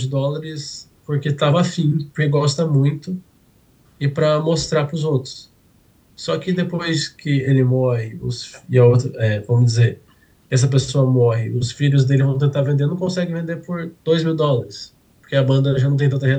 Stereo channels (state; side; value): identical; both; correlation 1.00